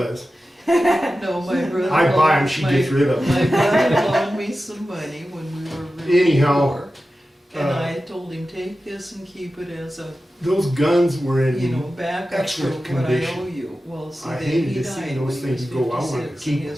No, my brother. I buy 'em, loaned- she my- gets rid of 'em. My brother loaned me some money when we were really Anyhow, poor. And uh, I told him, take this and keep it as a, Those guns were in. you know, backup for excellent what I condition. owe you. Well, see, I then hated he to see died those when he things was go. I wanted to 56 keep and 'em.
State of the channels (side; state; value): both; normal; correlation 0.93